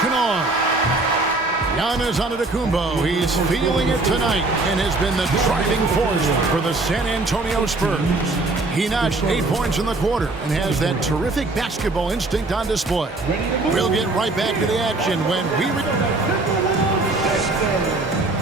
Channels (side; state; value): left; quieter; 3.1 dB